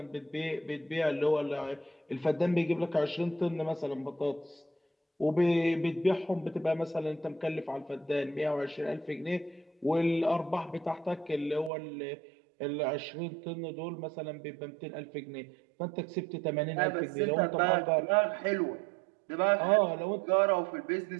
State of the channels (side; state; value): left; drops out; at 11.7 s